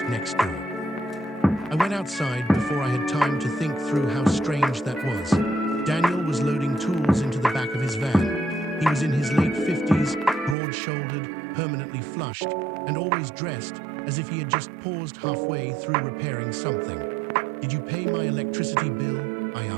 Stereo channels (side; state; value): left; drops out; at 10.6 s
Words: next door. I went outside before I had time to think through how strange that was. Daniel was loading tools into the back of his van. He was in his late 50s, broad-shouldered, permanently flushed, and always dressed as if he had just paused halfway through repairing something. "Did you pay my electricity bill?" I